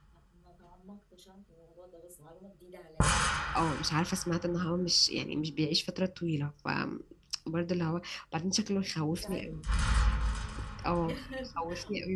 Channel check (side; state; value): both; identical; correlation 1.00